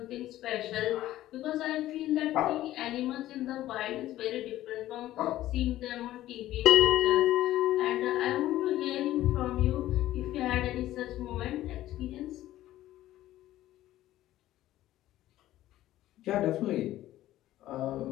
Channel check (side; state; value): right; quieter; 14.4 dB